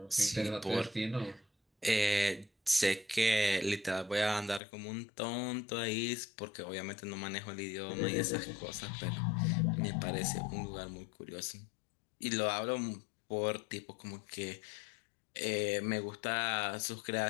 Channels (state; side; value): drops out; right; at 4.6 s